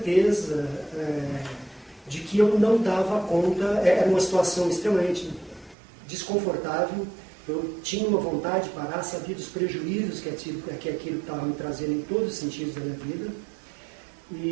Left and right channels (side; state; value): left; drops out; at 5.8 s